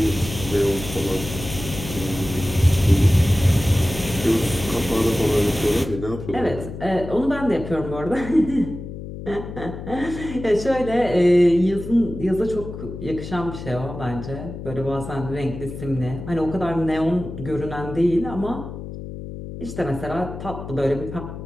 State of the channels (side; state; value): left; noise; hum, 10 dB below the sound